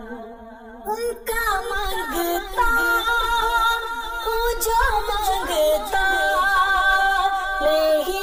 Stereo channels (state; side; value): identical; both; correlation 1.00